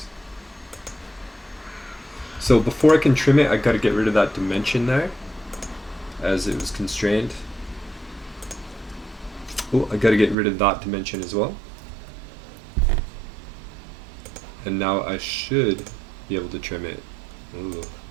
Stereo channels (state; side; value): drops out; left; at 10.4 s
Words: So before I can trim it, I gotta get rid of that dimension there, as it was constrained. Oh, I gotta get rid of that dimension as well. And now I should be able to trim it. Ooh.